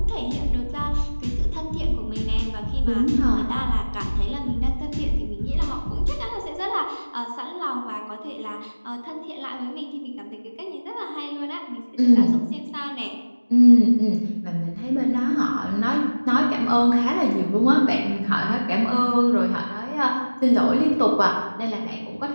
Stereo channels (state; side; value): inverted; both; correlation -1.00